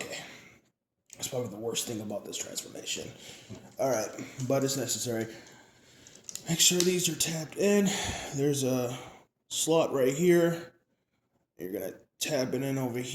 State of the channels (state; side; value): identical; both; correlation 1.00